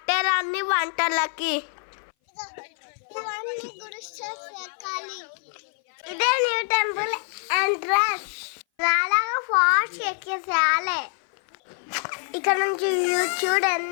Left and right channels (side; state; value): right; silent; 58 dB below the other